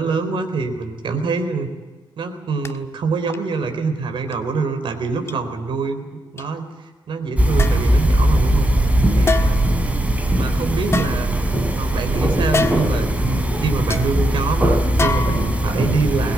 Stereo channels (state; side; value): normal; both; correlation 0.81